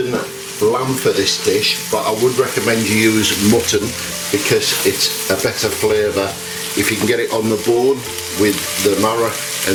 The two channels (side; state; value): both; identical; correlation 1.00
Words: lamb for this dish, but I would recommend you use mutton because it's a better flavour. If you can get it on the bone with the marrow